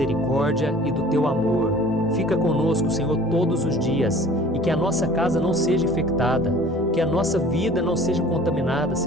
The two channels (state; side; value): normal; both; correlation 0.48